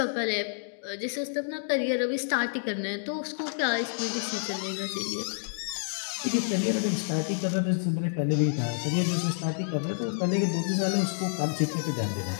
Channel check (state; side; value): silent; right; digital silence